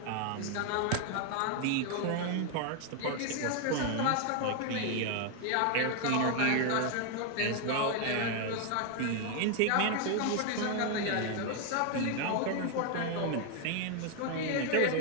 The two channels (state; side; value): different; both; correlation 0.00